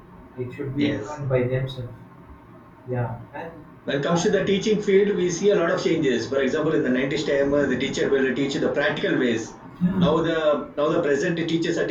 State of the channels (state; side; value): identical; both; correlation 1.00